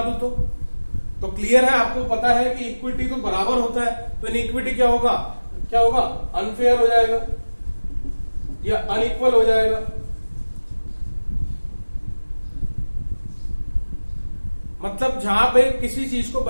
दूं तो क्लियर है, आपको पता है कि इक्विटी तो बराबर होता है, तो इनइक्विटी क्या होगा? अनफेयर हो जाएगा या अनइक्वल हो जाएगा। मतलब जहां पे किसी चीज को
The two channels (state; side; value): inverted; both; correlation -1.00